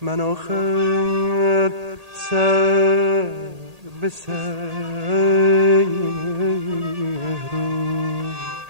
من آخر سر به سر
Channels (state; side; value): late; left; 1.8 ms